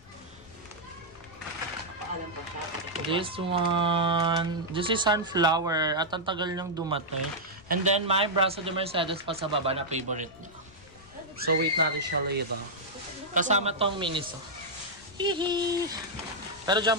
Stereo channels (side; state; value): left; noise; rumble, 25 dB below the sound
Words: This one, this is sunflower at ang tagal niyang dumating. And then my braso de Mercedes pa sa baba na favorite niya. So wait natin siya later. Kasama tong miniso. Hihi. Pero dyan